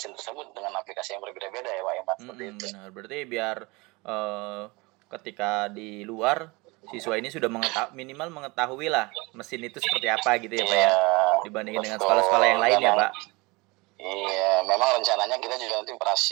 tersebut dengan aplikasi yang berbeda-beda ya Pak Iman. Benar, berarti biar ketika di luar siswa ini sudah minimal mengetahui lah mesin itu seperti apa gitu ya Pak ya, dibandingin dengan sekolah-sekolah yang lain ya Pak. Iya, memang rencananya kita juga nanti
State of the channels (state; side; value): quieter; left; 25.0 dB